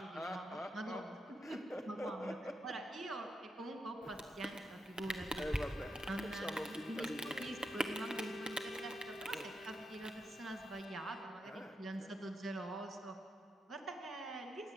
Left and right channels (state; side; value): normal; both; correlation 0.85